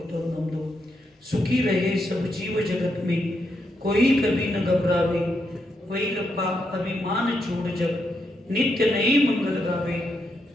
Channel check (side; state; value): both; normal; correlation 0.81